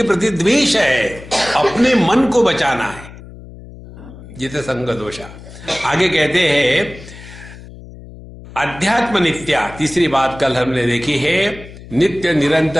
प्रति द्वेष है, अपने मन को बचाना है। जितसंग दोषा। आगे कहते हैं अध्यात्म नित्या, तीसरी बात कल हमने देखी है, नित्य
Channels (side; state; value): left; noise; hum, 17 dB below the sound